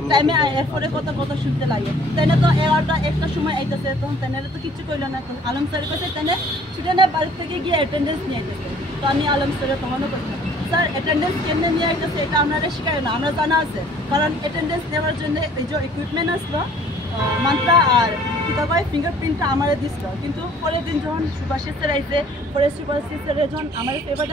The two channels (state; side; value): normal; both; correlation 0.55